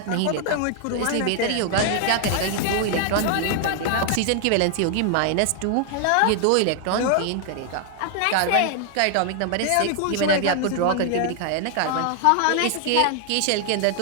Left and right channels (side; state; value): both; different; correlation 0.00